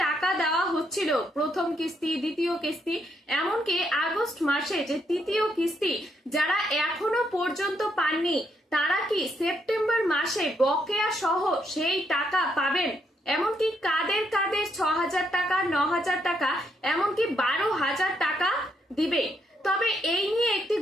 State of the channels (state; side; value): normal; both; correlation 0.76